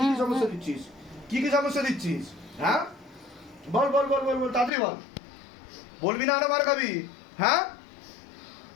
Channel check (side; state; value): right; drops out; at 4.7 s